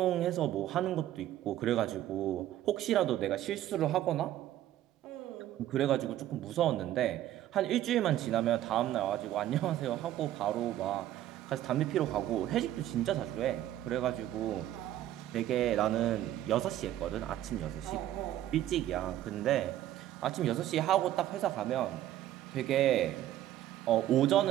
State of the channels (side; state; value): left; quieter; 13.0 dB